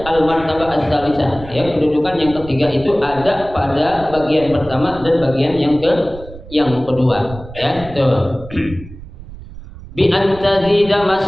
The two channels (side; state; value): right; noise; rumble, 16 dB below the sound